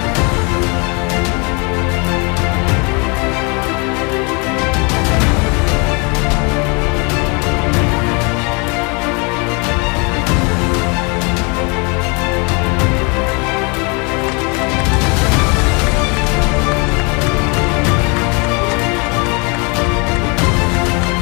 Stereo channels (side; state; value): right; quieter; 31.5 dB